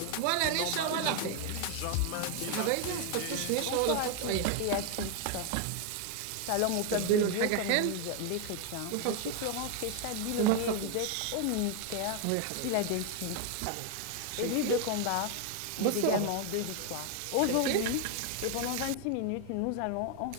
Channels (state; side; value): different; both; correlation 0.01